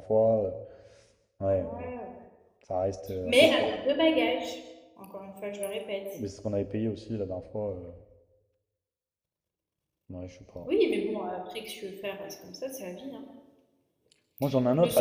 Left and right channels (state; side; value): identical; both; correlation 1.00